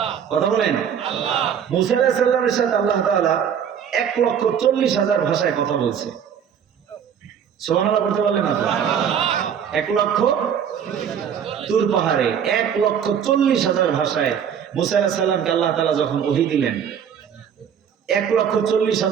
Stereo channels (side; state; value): left; quieter; 8.2 dB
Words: কথা বলেন। মুসা আলাইহিস সালামের সাথে আল্লাহ তাআলা 1,40,000 ভাষায় কথা বলছে। সুবহানাল্লাহ বলতে পারলেন না তো? 1,00,000 তুর পাহাড়ে 1,40,000 ভাষায় মুসা আলাইহিস সালামকে আল্লাহ তাআলা যখন ওহী দিলেন,